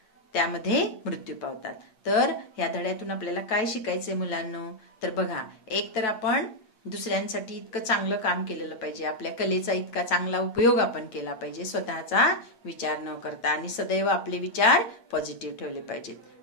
त्यामध्ये मृत्यू पावतात. तर या धड्यातून आपल्याला काय शिकायचंय मुलांनो? तर बघा, एक तर आपण दुसऱ्यांसाठी इतकं चांगलं काम केलेलं पाहिजे, आपल्या कलेचा इतका चांगला उपयोग आपण केला पाहिजे स्वतःचा विचार न करता, आणि सदैव आपले विचार पॉझिटिव्ह ठेवले पाहिजेत.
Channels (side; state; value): right; late; 8.7 ms